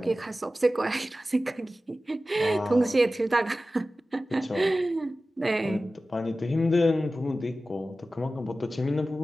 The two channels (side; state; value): both; normal; correlation 0.95